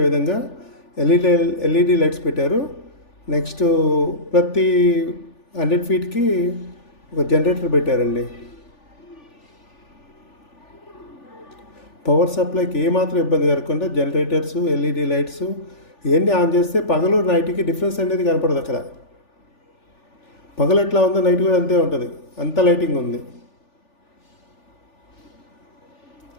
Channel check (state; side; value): late; right; 3.4 ms